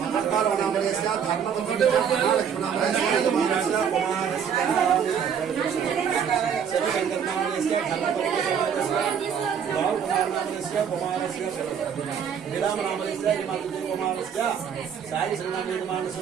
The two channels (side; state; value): left; quieter; 7.7 dB